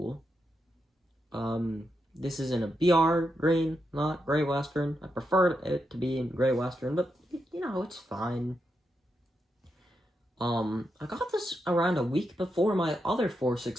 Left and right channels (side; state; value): both; normal; correlation 0.84